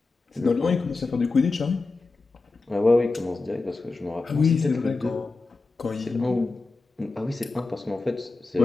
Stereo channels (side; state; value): right; quieter; 3.6 dB